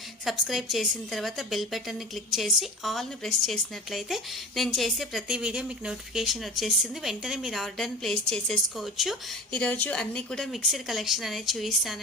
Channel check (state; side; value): normal; both; correlation 0.34